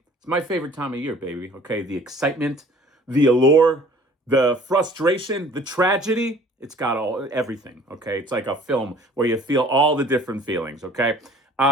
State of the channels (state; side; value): normal; both; correlation 0.51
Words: It's my favorite time of year, baby. Okay, the excitement, the allure, the frustration, the tragedy. It's got everything, okay? It's like a film where you feel all the different feelings, okay?